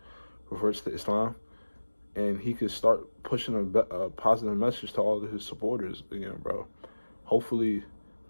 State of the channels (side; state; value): both; inverted; correlation -1.00